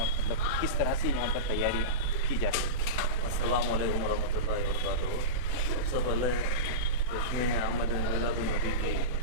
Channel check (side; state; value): left; late; 22 ms